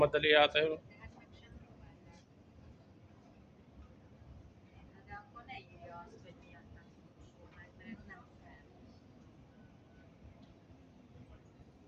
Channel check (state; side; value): identical; both; correlation 1.00